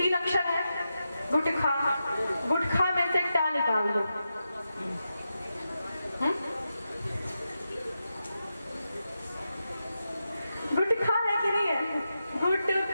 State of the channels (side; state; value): both; inverted; correlation -0.89